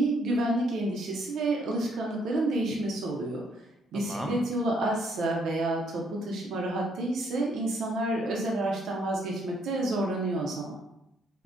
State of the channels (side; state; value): both; normal; correlation 0.69